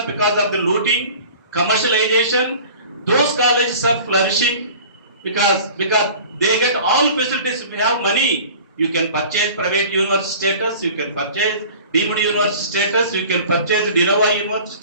because of the looting, commercialization, those colleges are flourishing because they get all facilities. If you have money, you can purchase private university status, you can purchase deemed university status, you can purchase Nawab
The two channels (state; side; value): inverted; both; correlation -0.43